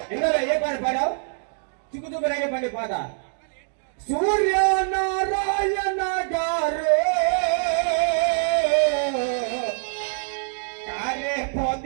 ఇందులో ఏ పాట పాడావు చిక్కుచుక్కు రేగే పండి పాట సూర్యనారాయణ గారు కారే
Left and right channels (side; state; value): left; silent; digital silence